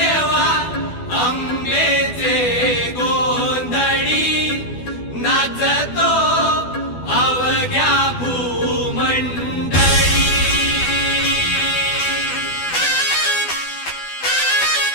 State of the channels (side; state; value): right; late; 12 ms